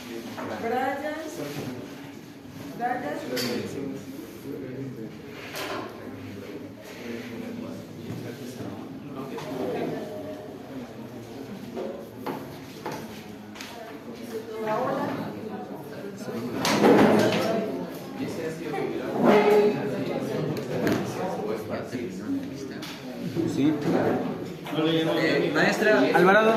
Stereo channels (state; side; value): identical; both; correlation 1.00